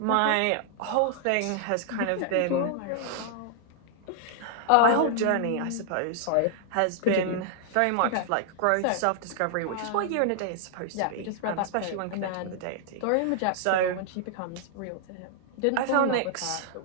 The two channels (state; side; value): different; both; correlation -0.01